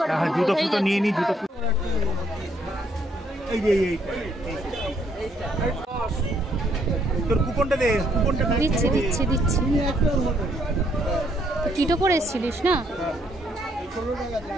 হ্যাঁ জুতো ফুটো নিয়ে নিই, জুতো এই যে এই তোর কুপনটা দে, কুপনটা দিচ্ছি দিচ্ছি দিচ্ছি। টিটো করে এসেছিলিস না?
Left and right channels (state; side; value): normal; both; correlation 0.70